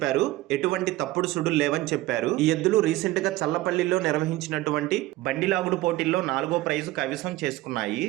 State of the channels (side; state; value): left; quieter; 17.4 dB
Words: ఎటువంటి తప్పుడు సుడులు లేవని చెప్పారు. ఈ ఎద్దులు రీసెంట్ గా చల్లపల్లిలో నిర్వహించినటువంటి బండి లాగుడు పోటీల్లో 4వ ప్రైజు కైవసం చేసుకున్నాయి.